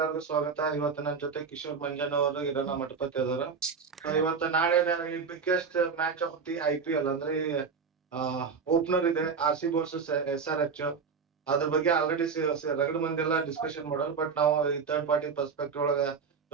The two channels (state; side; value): quieter; left; 5.6 dB